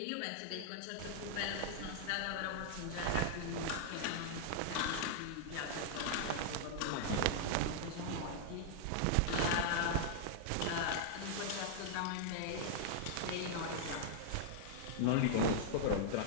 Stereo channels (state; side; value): different; both; correlation -0.01